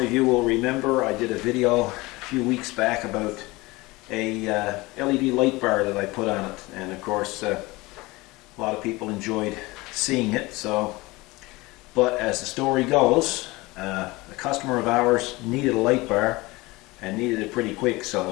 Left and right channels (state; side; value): quieter; right; 22.0 dB